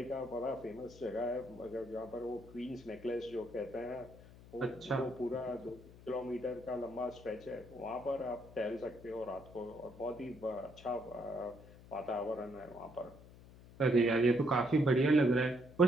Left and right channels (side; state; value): left; noise; hum, 20 dB below the sound